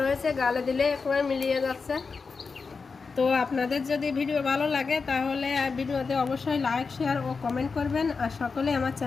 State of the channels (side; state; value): right; quieter; 4.8 dB